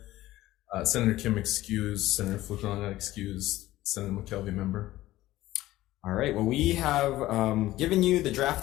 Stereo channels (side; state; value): right; quieter; 16.1 dB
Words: Senator Kim excused, Senator Fukunaga excused, Senator McKelvey member. All right, well, we have given you the draft